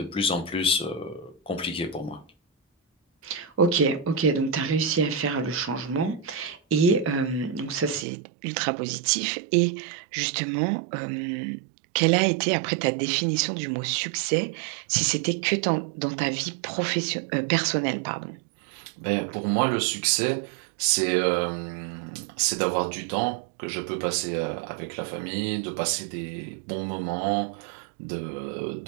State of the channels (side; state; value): left; drops out; at 8.1 s